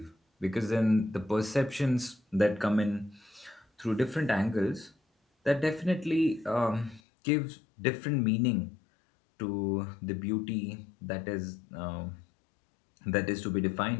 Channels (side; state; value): right; drops out; at 7.0 s